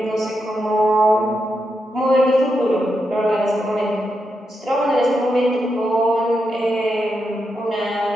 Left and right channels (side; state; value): both; normal; correlation 0.85